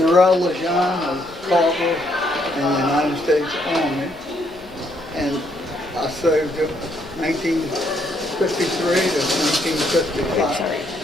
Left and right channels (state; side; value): normal; both; correlation 0.72